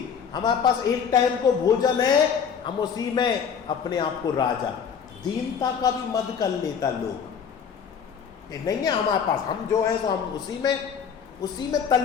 हमारे पास एक टाइम को भोजन है, हम उसी में अपने आप को राजा। दीनता का भी मद कर लेता लोग। नहीं है हमारे पास, हम जो है तो हम उसी में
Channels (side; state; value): right; quieter; 7.1 dB